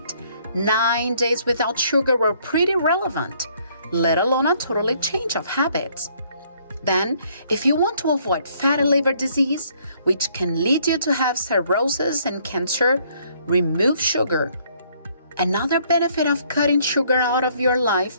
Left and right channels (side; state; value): both; inverted; correlation -0.65